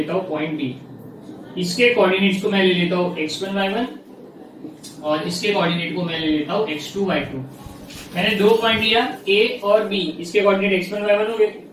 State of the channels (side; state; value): both; identical; correlation 1.00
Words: हूँ पॉइंट बी। इसके कोऑर्डिनेट्स को मैं ले लेता हूँ x1 y1 और इसके कोऑर्डिनेट को मैं ले लेता हूँ x2 y2। मैंने दो पॉइंट लिया ए और बी, इसके कोऑर्डिनेट x1 y1 हो गए,